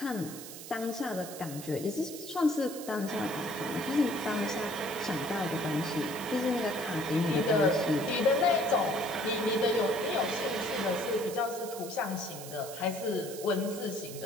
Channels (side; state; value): right; noise; hiss, 12 dB below the sound